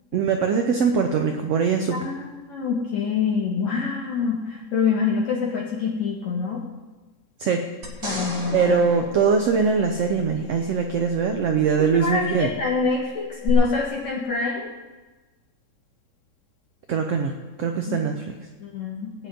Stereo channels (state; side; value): late; right; 3.6 ms